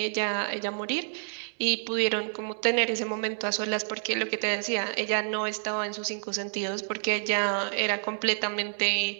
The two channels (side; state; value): left; silent; digital silence